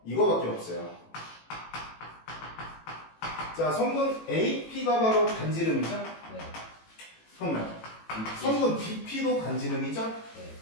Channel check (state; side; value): late; right; 18 ms